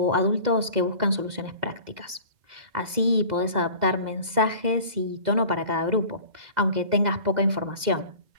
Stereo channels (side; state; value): left; late; 2.0 ms